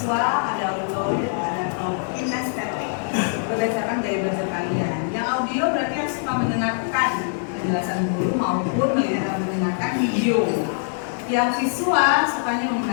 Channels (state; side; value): silent; right; digital silence